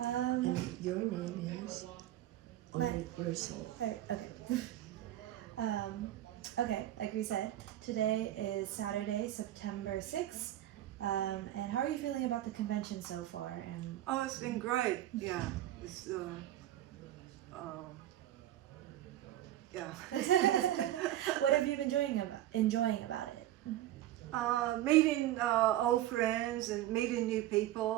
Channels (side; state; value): left; quieter; 13.4 dB